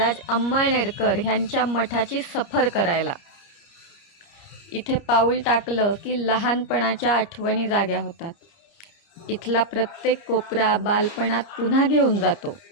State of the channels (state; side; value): late; right; 30 ms